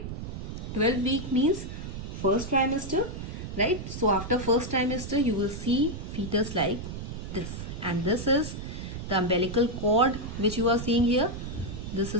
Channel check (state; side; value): noise; right; rumble, 7 dB below the sound